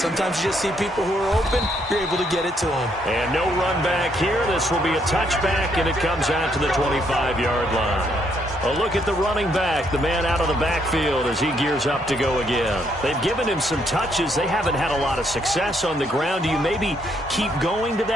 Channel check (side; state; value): both; normal; correlation 0.72